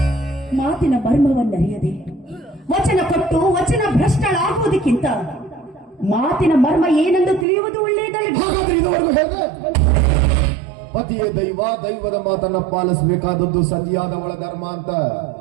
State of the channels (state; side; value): drops out; left; at 7.5 s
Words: ಮಾತಿನ ಮರ್ಮವನ್ನರಿಯದೆ ವಚನ ಕೊಟ್ಟು ವಚನ ಭ್ರಷ್ಟಳಾಗುವುದಕ್ಕಿಂತ ಮಾತಿನ ಮರ್ಮ ಏನೆಂದು ತಿಳಿಯುವುದು ಒಳ್ಳೆಯದಲ್ಲ. ಪತಿಯ ದೈವ, ದೈವದ ಮಾತನ್ನ ಪಾಲಿಸಬೇಕಾದದ್ದು ಸತಿಯಾದವಳ ಧರ್ಮ ಅಂತ.